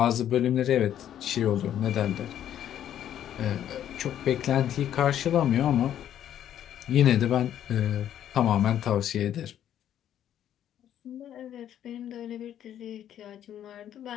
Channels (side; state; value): right; quieter; 10.7 dB